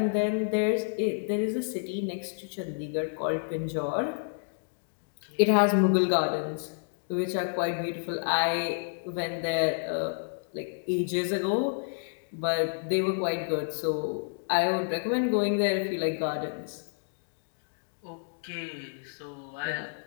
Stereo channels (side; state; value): right; silent; digital silence